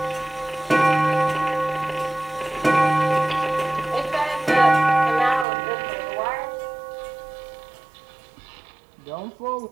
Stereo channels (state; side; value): drops out; left; at 5.5 s